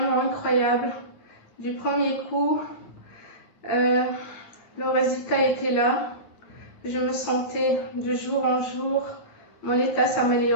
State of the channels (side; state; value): right; late; 9.3 ms